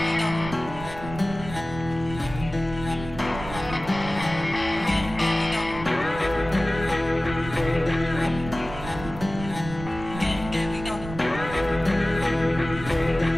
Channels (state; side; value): noise; right; rumble, 12 dB below the sound